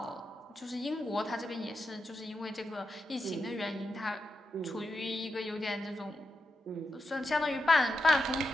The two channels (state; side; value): normal; both; correlation 0.87